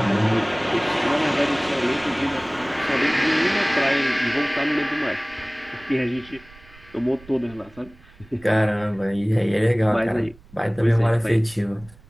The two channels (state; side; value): noise; right; rumble, 24 dB below the sound